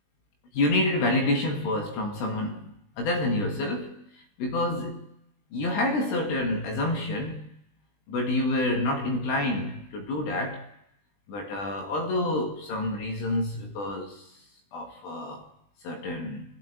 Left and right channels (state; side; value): late; right; 20 ms